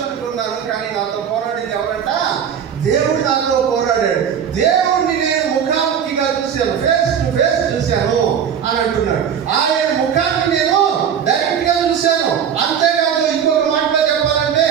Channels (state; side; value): quieter; left; 8.1 dB